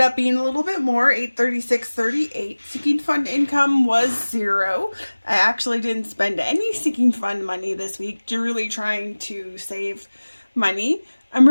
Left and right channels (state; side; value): inverted; both; correlation -1.00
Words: up being a little bit more, $836.38. Sinking fund income was $0. I actually didn't spend any sinking fund money this week, really trying to save money.